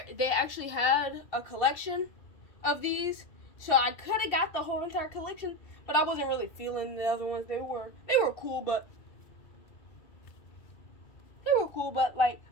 They actually had a collection of these, so I could have got the whole entire collection, but I wasn't really feeling the other ones. They were cool, but like,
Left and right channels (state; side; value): late; right; 2.7 ms